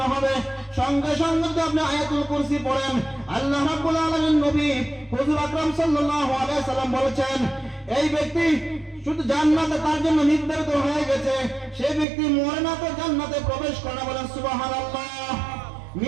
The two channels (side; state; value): left; drops out; at 12.1 s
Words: হবে, সঙ্গে সঙ্গে যদি আপনি আয়াতুল কুরসি পড়েন, আল্লাহ রাব্বুল আলামিন নবী হুজুর আকরাম সাল্লাল্লাহু আলাইহি সাল্লাম বলেছেন এই ব্যক্তি শুধু জান্নাতে তার জন্য নির্ধারিত হয়ে গেছে, সেই ব্যক্তি মরে না তো জান্নাতে প্রবেশ করে না, বলেন সুবহানাল্লাহ।